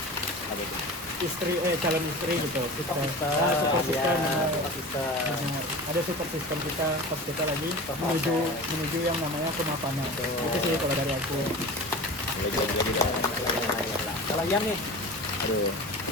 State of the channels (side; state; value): both; normal; correlation 0.34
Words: istri, calon istri gitu, kita super system, benar. Ada super system kita pas kita lagi menuju yang namanya kemapanan. Itu sih kalau dari aku. Lagi. Kalau Ian nih, Aduh,